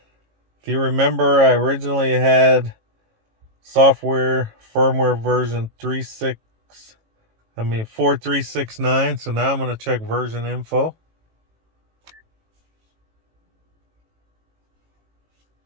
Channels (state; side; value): late; left; 18 ms